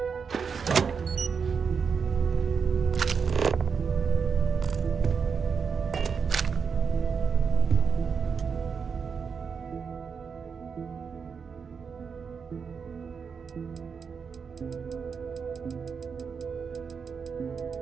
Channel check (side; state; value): left; quieter; 6.0 dB